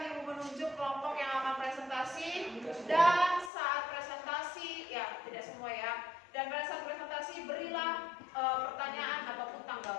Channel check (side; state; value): right; drops out; at 3.5 s